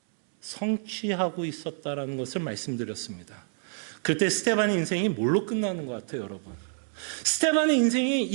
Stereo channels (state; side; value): silent; left; digital silence